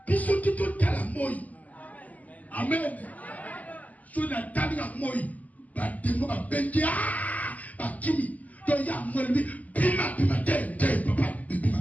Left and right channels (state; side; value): late; right; 0.076 ms